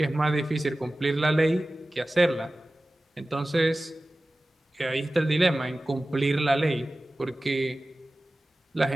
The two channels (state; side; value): normal; both; correlation 0.96